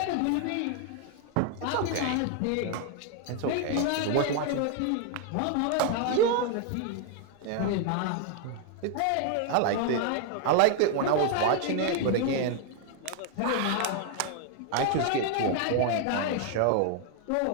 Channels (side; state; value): both; different; correlation 0.00